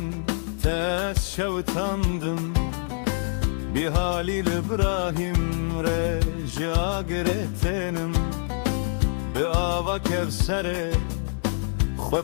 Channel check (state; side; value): silent; right; digital silence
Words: tez şevtandım bir halil İbrahim reca giretenim bi ava kevsere xwe